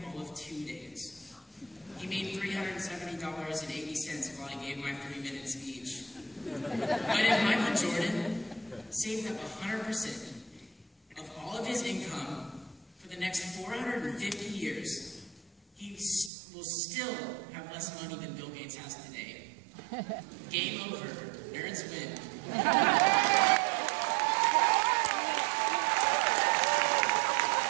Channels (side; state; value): left; drops out; at 16.3 s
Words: all of 2 days. He made $370.80 while I gave my 3-minute speech. But if Michael Jordan saved up 100% of all of his income for the next 450 years, he will still have less money than Bill Gates has today. Game over. Nerds win.